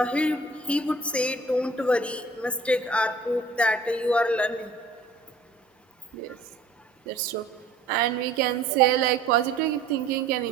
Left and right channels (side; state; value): left; quieter; 3.1 dB